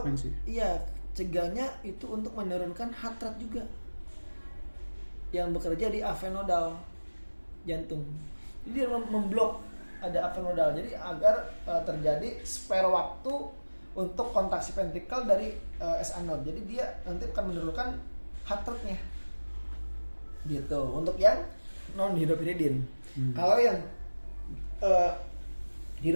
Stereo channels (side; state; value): both; inverted; correlation -1.00